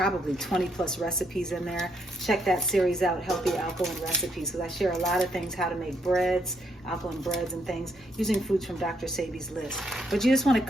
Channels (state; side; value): normal; both; correlation 0.75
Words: 20 plus recipes in there. Check that series out, Healthy Alkaline Recipes, because I share a lot of things, how to make breads, alkaline breads and things, using foods from Dr. Sebi's list. But you just want